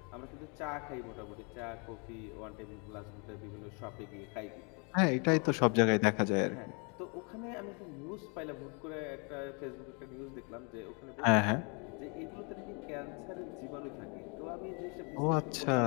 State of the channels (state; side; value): quieter; right; 34.4 dB